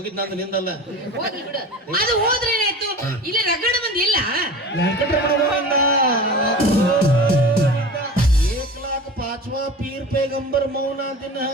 ನಂದು ನಿಂದಲ್ಲ. ಹೋಗಿ ಬಿಡು. ಅದು ಹೋದ್ರೆ ಏನಾಯ್ತು? ಇಲ್ಲಿ ರಗಡ ಮಂದಿ ಇಲ್ಲ. ವೆಂಕಟರಮಣ एक लाख 5वां पीर पैगंबर मौना दिन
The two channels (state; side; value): normal; both; correlation 0.35